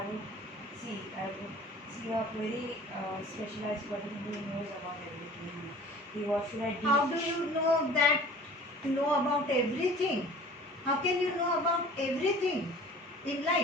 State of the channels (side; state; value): both; normal; correlation 0.45